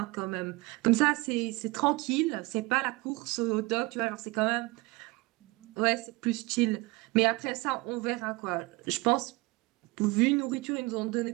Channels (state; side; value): quieter; left; 23.6 dB